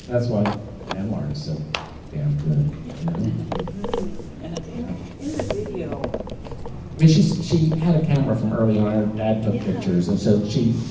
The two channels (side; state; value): both; identical; correlation 1.00